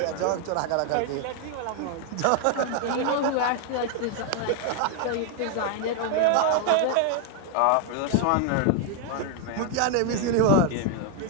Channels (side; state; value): both; different; correlation 0.00